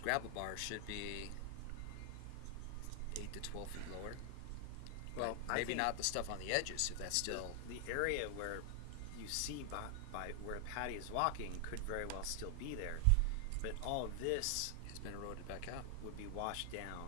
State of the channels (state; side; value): different; both; correlation 0.00